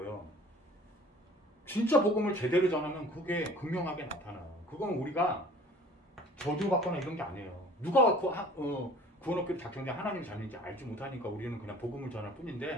진짜 복음을 제대로 전하면 그게 극명하게 나타나요. 그건 우리가 저주받거나 이런 게 아니에요. 누가 구원 얻기를 작정된 하나님 자녀인지 알지 못하니까 우리는 그냥 복음을 전할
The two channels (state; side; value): normal; both; correlation 0.48